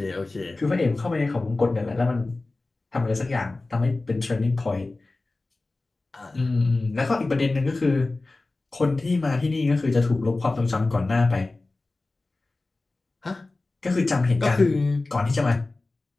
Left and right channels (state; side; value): quieter; right; 3.2 dB